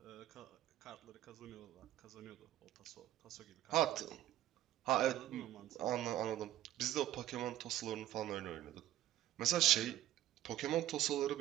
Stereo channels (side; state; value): left; quieter; 13.5 dB